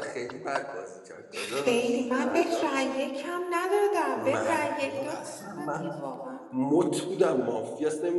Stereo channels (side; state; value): both; identical; correlation 1.00